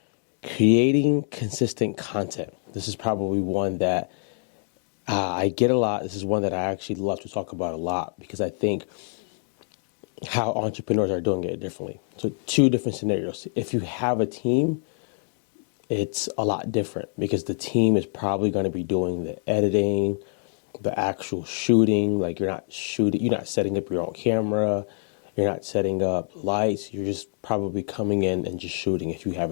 creating consistent content. This is probably one that I get a lot. This is one that I actually love to talk about a lot because I think how entrepreneurs are doing it differently. So two different scenarios. If you have a team, it's a lot different because the team is probably going to be doing the editing, the actual shooting. Like you're not setting up your own camera. You're not setting up lights. You're just probably coming in and just shooting if you have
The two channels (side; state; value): right; silent; digital silence